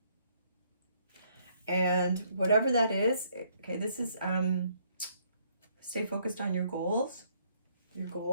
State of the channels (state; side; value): inverted; both; correlation -0.68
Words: And whatever that is, okay, this is, stay focused on your goals, your